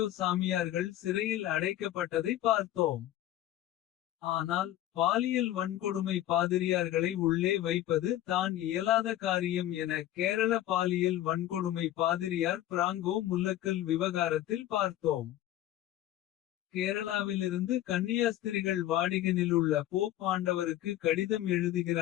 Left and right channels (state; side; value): quieter; right; 13.4 dB